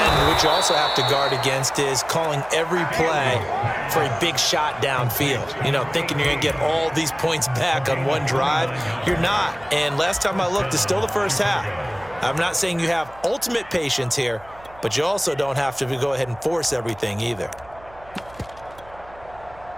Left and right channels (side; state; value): right; noise; hum, 23 dB below the sound